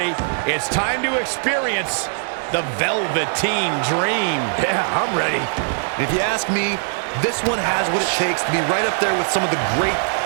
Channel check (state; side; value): silent; left; digital silence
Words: it's time to experience the Velveteen Dream. Yeah, I'm ready. If you ask me, this one has what it takes to be right up there with some of the great